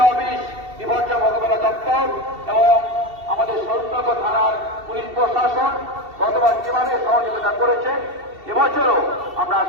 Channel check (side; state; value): left; late; 2.7 ms